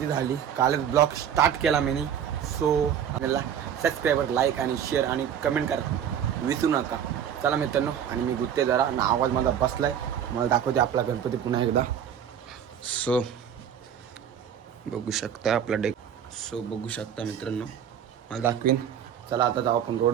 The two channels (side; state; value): left; quieter; 9.0 dB